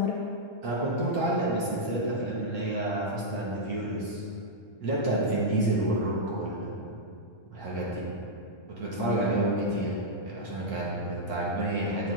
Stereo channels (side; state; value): right; late; 1.3 ms